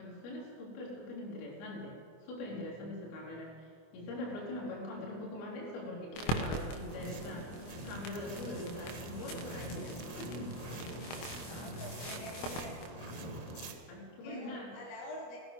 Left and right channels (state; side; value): late; right; 24 ms